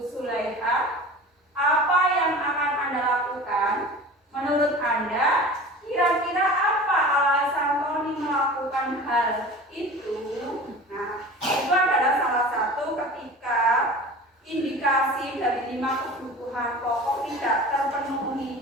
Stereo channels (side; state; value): both; normal; correlation 0.38